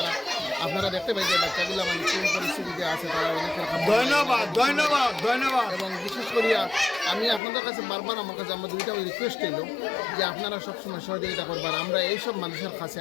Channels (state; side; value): drops out; right; at 7.4 s